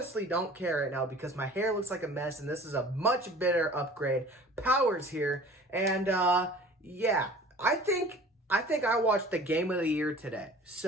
don't care right now because my hair looks like a mess and this is a much better upgrade. Power's here, and yeah, I think I watched the game of the year today.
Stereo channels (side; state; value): both; normal; correlation 0.46